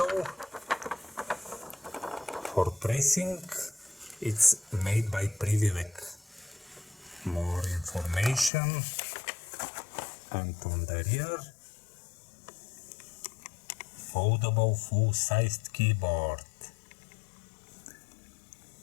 for pressing. It's made by Privivek. More information. And on the rear, foldable full-sized keyboard.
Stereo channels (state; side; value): drops out; right; at 8.5 s